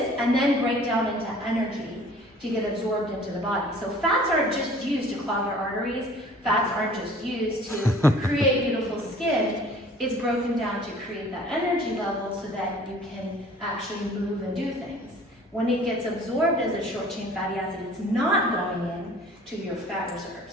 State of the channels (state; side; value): normal; both; correlation 0.50